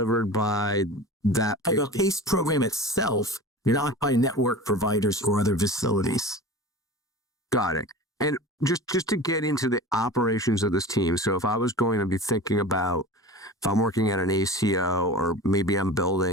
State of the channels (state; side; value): normal; both; correlation 0.35